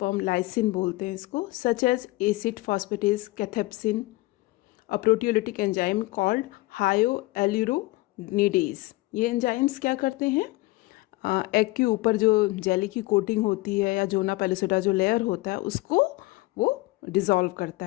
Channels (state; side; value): quieter; right; 21.1 dB